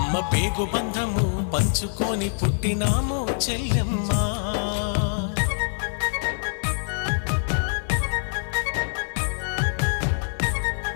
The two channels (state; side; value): silent; right; 62 dB below the other